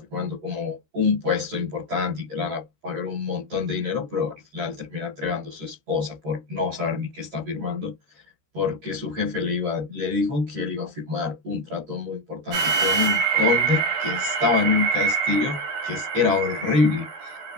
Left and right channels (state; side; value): late; left; 13 ms